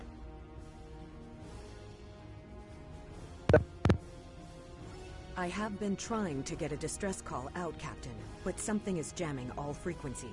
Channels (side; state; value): both; identical; correlation 1.00